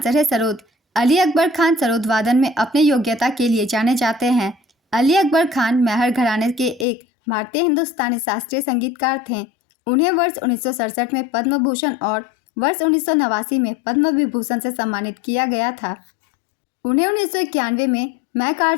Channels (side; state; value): right; drops out; at 6.9 s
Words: है सरोद। अली अकबर खान सरोद वादन में अपने योग्यता के लिए जाने जाते हैं। अली अकबर खान मेहर घराने के एक भारतीय हिंदुस्तानी शास्त्रीय संगीतकार थे। उन्हें वर्ष 1967 में पद्म भूषण और वर्ष 1989 में पद्म विभूषण से सम्मानित किया गया था। उन्हें 1991 में